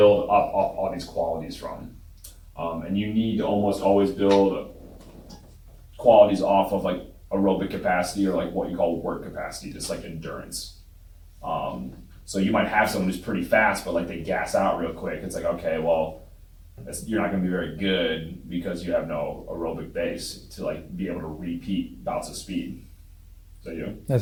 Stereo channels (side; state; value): both; identical; correlation 1.00